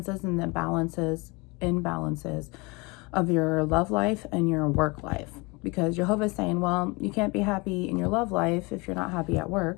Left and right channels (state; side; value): quieter; right; 26.7 dB